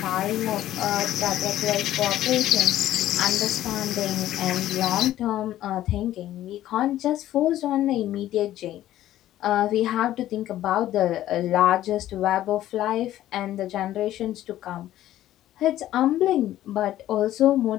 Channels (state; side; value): quieter; right; 13.5 dB